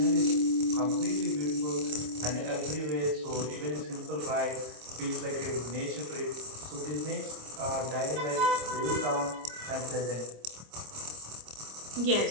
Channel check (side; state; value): left; late; 26 ms